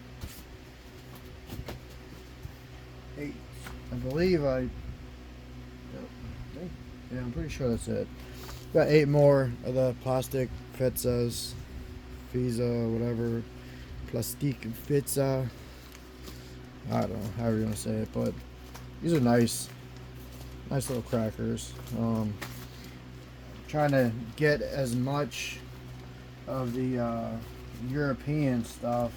8. I believe yeah, I'm pretty sure that's it. Got 8 more of the plastic pizzas, pizza, whatever, plastic pizza. I don't know, however you want to say it, but these are nice little crackers. Trying to get as much of the European stuff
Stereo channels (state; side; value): identical; both; correlation 1.00